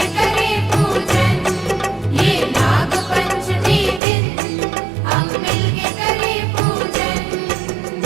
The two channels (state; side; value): drops out; left; at 4.0 s